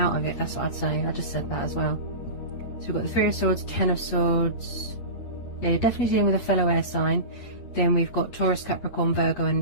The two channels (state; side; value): late; right; 8.7 ms